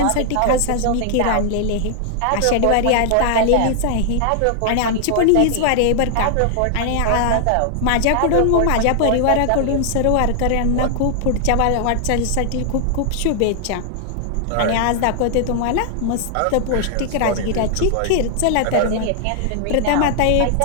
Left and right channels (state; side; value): different; both; correlation -0.01